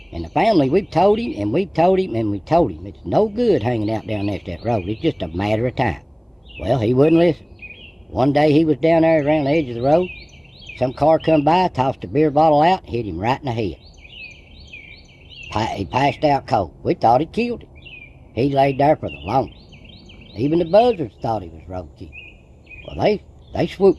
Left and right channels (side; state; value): both; identical; correlation 1.00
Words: And the family, we've told him, and we've told him, and we've told him. It's no good hanging out down next to that road. It's just a matter of time. Well, he wouldn't listen. One day he was down there around the edge of the road. Some car come by, tossed a beer bottle out, hit him right in the head. He passed out cold. We thought it killed him. He laid there for the longest. Even the buzzards thought he was roadkill. Well, they